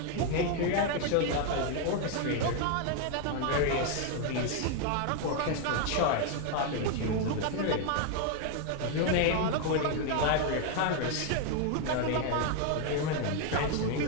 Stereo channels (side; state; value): both; different; correlation 0.01